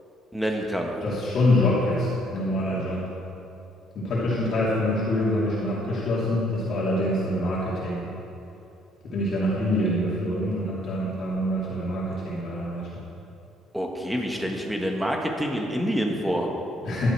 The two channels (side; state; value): both; normal; correlation 0.67